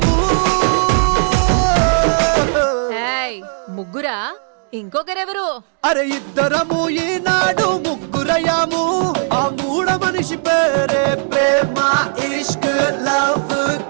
ముగ్గురా ఇంకొకరెవరు అరే ఇద్దరము ఈనాడు ముగ్గురయ్యాము ఆ మూడ మనిషి పేరే ప్రేమ ఇష్క్ లవ్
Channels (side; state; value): left; silent; digital silence